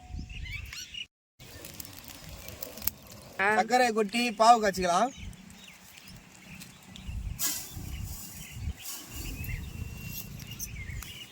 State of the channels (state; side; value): identical; both; correlation 1.00